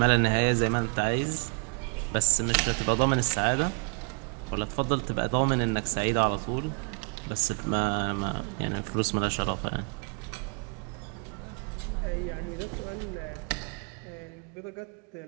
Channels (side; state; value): left; quieter; 38.3 dB